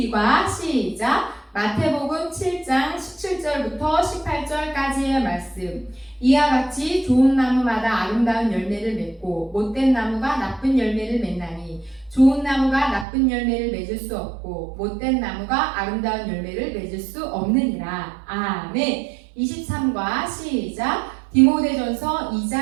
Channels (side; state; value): left; drops out; at 13.1 s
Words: 시작. 마태복음 7장 17절부터 18절까지의 말씀. 이와 같이 좋은 나무마다 아름다운 열매를 맺고 못된 나무가 나쁜 열매를 맺나니 좋은 나무가 나쁜 열매를 맺을 수 없고 못된 나무가 아름다운 열매를 맺을 수 없느니라. 아멘. 23과 시작. 디모데전서